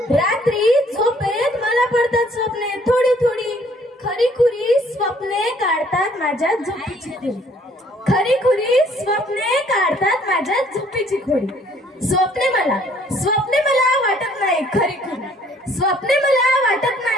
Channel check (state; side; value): normal; both; correlation 0.61